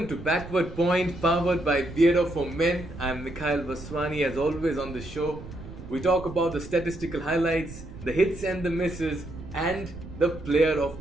to Backward Point, powered by Beardo for Men. I'm Mikhail Vaswani. As always on the show, we talk about the statistical highlights, the hits and the misses, and the player of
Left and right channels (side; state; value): right; noise; rumble, 13 dB below the sound